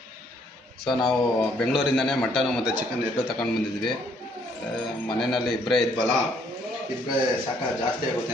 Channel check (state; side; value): normal; both; correlation 0.67